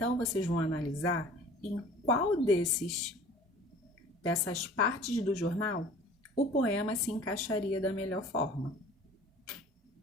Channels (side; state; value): both; normal; correlation 0.46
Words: vocês vão analisar em qual dessas partes do jornal o poema se encaixaria da melhor forma.